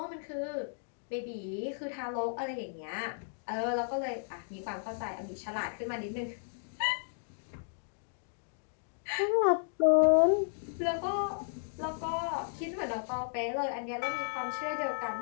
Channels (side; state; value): right; silent; digital silence